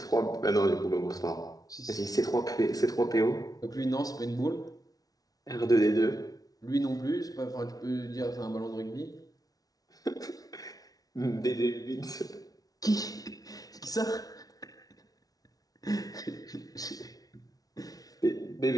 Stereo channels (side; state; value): right; late; 0.18 ms